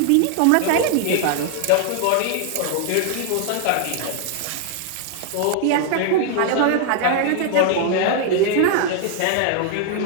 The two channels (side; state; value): both; different; correlation 0.00